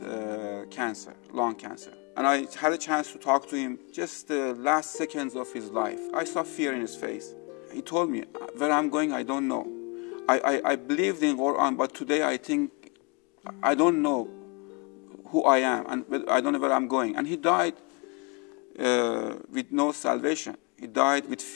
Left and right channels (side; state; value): right; quieter; 30.8 dB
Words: cancer, lung cancer. And I had a chance to talk to him just the last seconds of his life. I saw fear in his face. He told me, where I'm going, I don't know. I believed in Quran, but today I think I don't know who I am, and I don't know where I'm going. And he died with no salvation. He died with